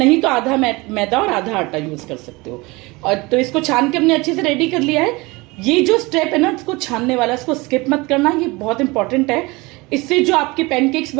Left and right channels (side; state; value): left; quieter; 23.7 dB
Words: तो आधा मैदा और आधा आटा यूज कर सकते हो। और तो इसको छान के हमने अच्छे से रेडी कर लिया है। ये जो स्टेप है ना, इसको छानने वाला, इसको स्किप मत करना, ये बहुत इंपॉर्टेंट है। इससे जो आपके पैनकेक्स